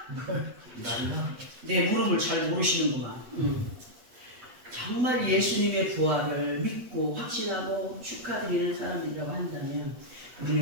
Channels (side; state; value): left; late; 8.2 ms